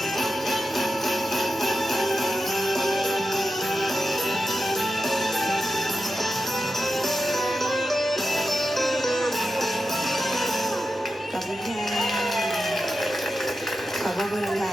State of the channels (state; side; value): normal; both; correlation 0.90